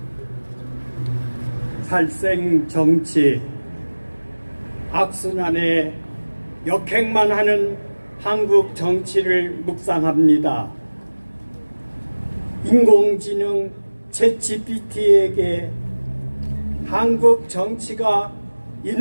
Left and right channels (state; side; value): inverted; both; correlation -1.00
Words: 살생 정치, 악순환에 역행만 하는 한국 정치를 묵상합니다. 인공지능 챗GPT에게 한국 정치가